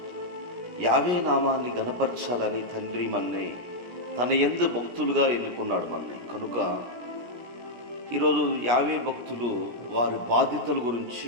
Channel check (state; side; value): late; left; 16 ms